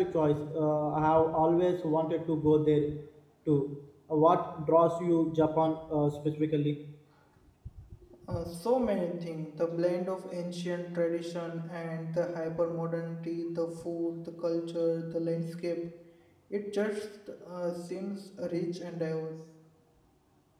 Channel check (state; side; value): identical; both; correlation 1.00